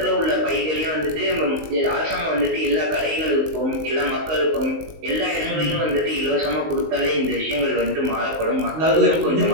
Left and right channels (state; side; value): late; left; 19 ms